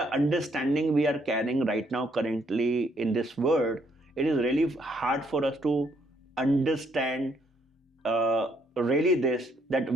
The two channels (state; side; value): normal; both; correlation 0.70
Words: understanding we are carrying right now, currently in this world, it is really hard for us to understand really this, that